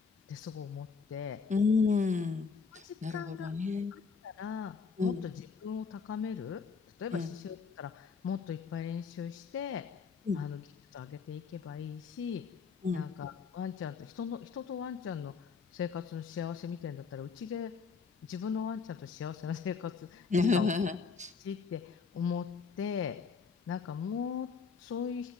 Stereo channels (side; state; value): right; quieter; 5.2 dB